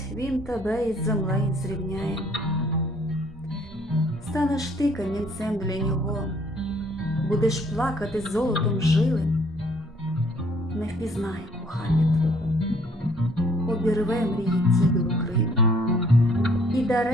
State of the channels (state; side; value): normal; both; correlation 0.61